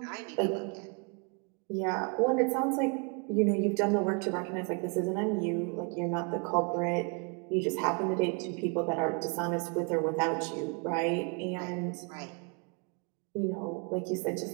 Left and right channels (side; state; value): left; quieter; 33.5 dB